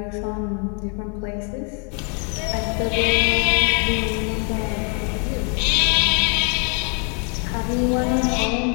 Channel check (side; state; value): right; quieter; 38.3 dB